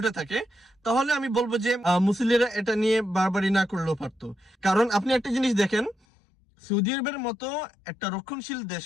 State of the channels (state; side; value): drops out; right; at 6.0 s